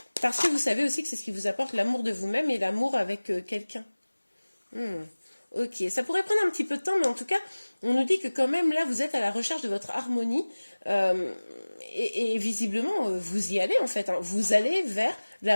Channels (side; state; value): both; inverted; correlation -1.00